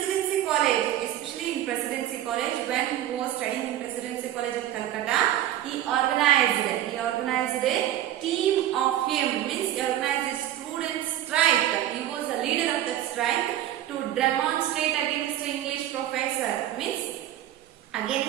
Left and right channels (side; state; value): left; quieter; 12.6 dB